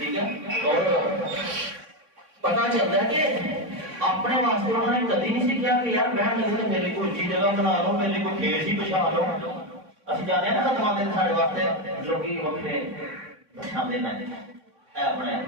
ہے، اور پتا چلتا ہے کہ اپنے واسطے انہوں نے کبھی نہیں سیکھا کہ یار بہن لگے تو میرے کو اچھی جگہ بنا لو، میرے کو ٹھیک سی بچھا لو۔ اسی جانے نا خدمات سارے واسطے لوگ وقتے بچھاندے نہ اپنے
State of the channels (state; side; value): late; left; 3.6 ms